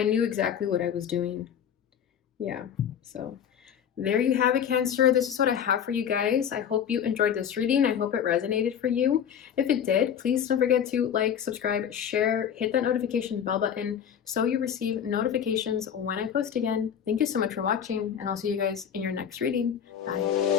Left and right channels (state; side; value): quieter; right; 8.6 dB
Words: knew exactly what I was doing. Yeah, so there you have it, Cancer. This is what I have for you guys. I hope you enjoyed this reading. I hope it resonated for you. If it did, please don't forget to like, subscribe, share, hit that notification bell button so you receive notifications when I post again. Thank you so much for watching, and I'll see you guys in your next reading.